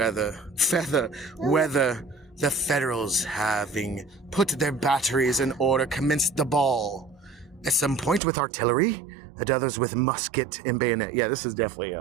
the Federals, having put their batteries in order, commenced the ball. At some point with artillery, at others with musket and bayonet. Yeah, this is definitely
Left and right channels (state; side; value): drops out; left; at 8.2 s